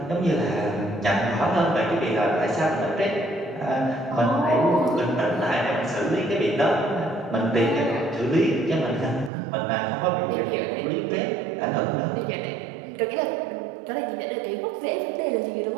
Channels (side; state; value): left; drops out; at 9.3 s